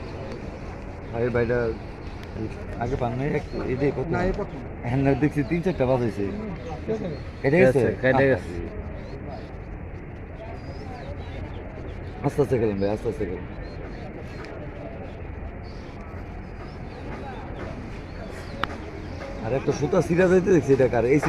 আরে ভাইটা আগে পান নাই এটাই কত হ্যাঁ দেখছি 3-4টা বাজাইছে কেটে গেছে আস্তে আস্তে খেলেন ভাই আস্তে আস্তে খেলেন আর একটা সুতা সিরা যাইতে দেখছি এটা কার এই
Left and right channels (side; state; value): both; identical; correlation 1.00